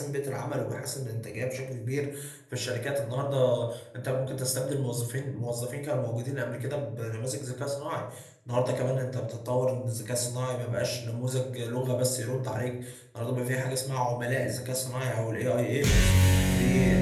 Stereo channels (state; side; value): identical; both; correlation 1.00